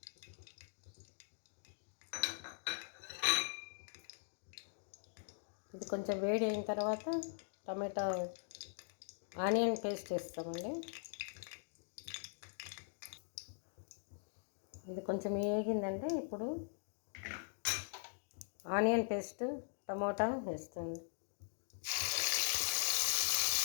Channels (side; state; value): right; silent; digital silence